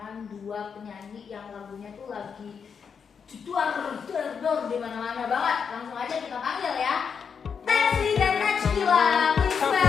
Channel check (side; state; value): right; quieter; 6.5 dB